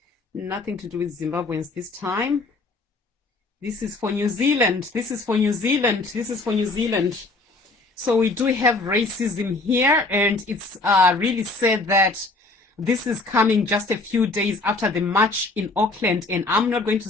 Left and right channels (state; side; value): quieter; right; 3.3 dB